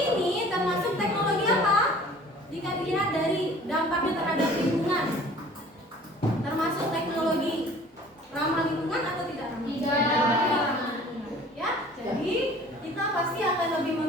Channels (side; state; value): both; normal; correlation 0.48